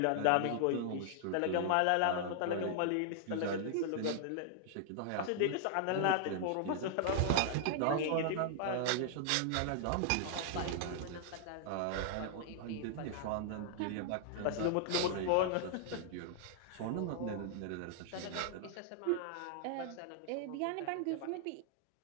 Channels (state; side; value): different; both; correlation -0.01